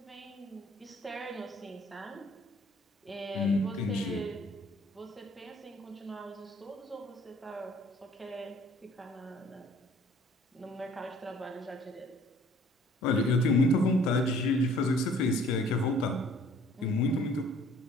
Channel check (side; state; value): both; normal; correlation 0.55